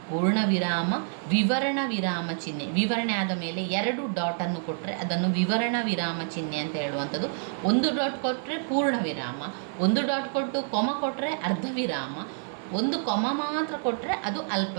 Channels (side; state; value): left; silent; 55 dB below the other